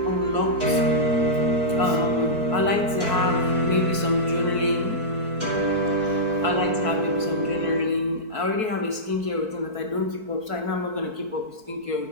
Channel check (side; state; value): left; late; 4.6 ms